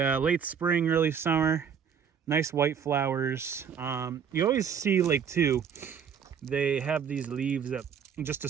spring, early summer. Nice white flowers. You always see like too, they have these leaves at just a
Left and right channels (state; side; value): quieter; left; 7.4 dB